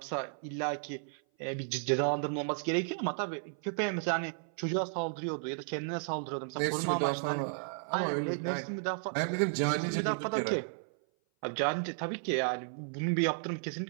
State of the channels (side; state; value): left; silent; 55 dB below the other